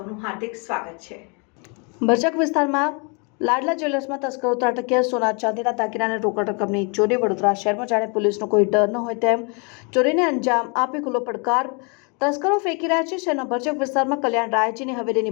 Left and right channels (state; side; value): quieter; right; 34.2 dB